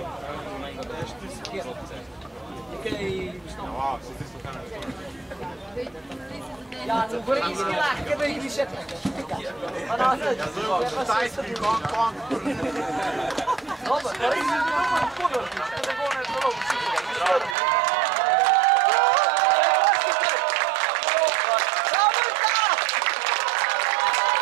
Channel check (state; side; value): drops out; left; at 17.6 s